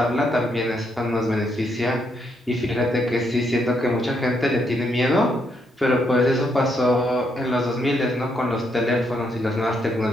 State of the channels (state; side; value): normal; both; correlation 0.76